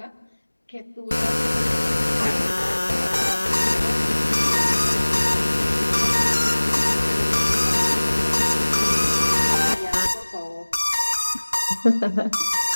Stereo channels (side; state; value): both; inverted; correlation -1.00